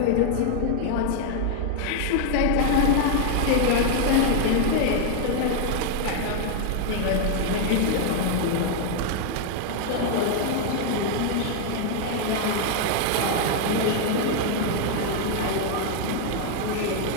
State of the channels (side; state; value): both; different; correlation 0.00